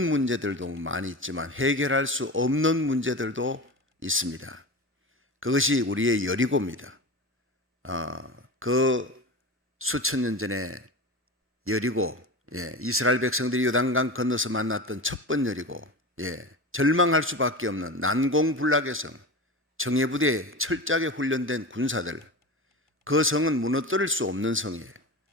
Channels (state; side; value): normal; both; correlation 0.27